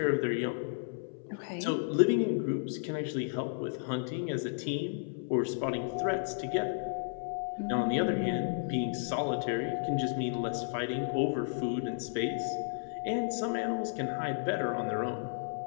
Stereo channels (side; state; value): right; silent; 56 dB below the other